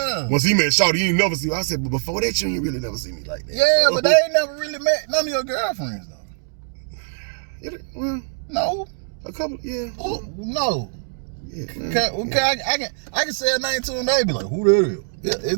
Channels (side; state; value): left; silent; digital silence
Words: he met Shawty, you ain't never see me. I said, but before that, you ain't really never see me like that. Yeah, but they ain't never really met none of your girlfriends though. Well, no. A couple, yeah. No. Yeah, okay, I can say a name to them. They be like, who the hell? Yeah,